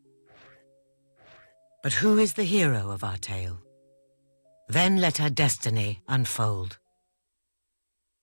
But who is the hero of our tale? Then let our destiny unfold.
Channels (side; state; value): both; inverted; correlation -1.00